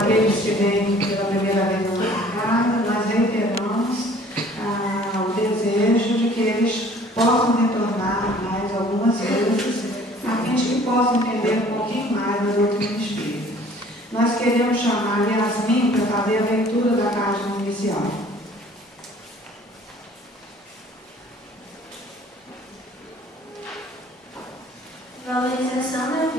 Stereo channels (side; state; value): both; normal; correlation 0.53